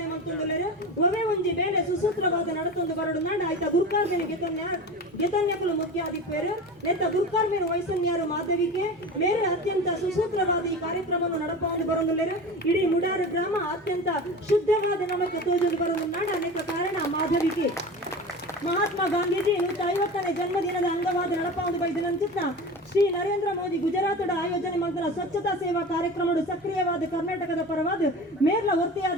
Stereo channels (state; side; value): normal; both; correlation 0.31